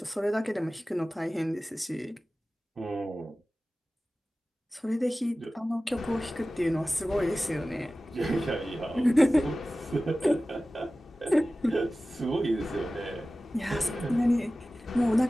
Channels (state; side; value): normal; both; correlation 0.96